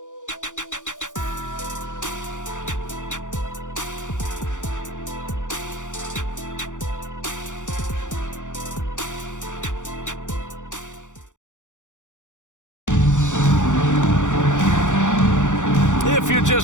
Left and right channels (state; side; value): late; right; 0.86 ms